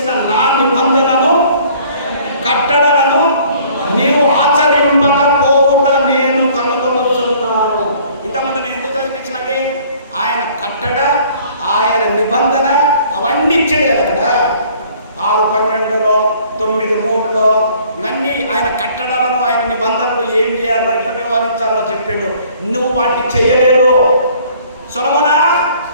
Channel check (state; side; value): inverted; both; correlation -0.55